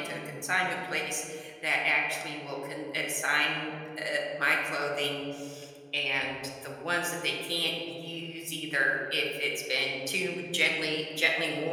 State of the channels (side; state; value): both; identical; correlation 1.00